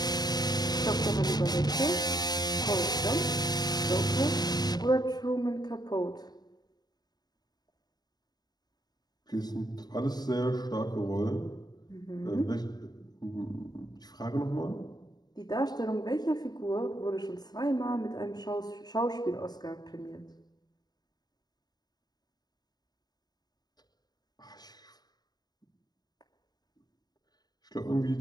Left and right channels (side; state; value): right; late; 0.20 ms